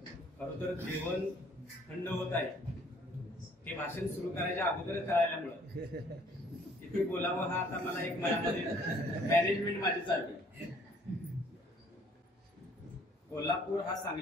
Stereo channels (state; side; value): normal; both; correlation 0.60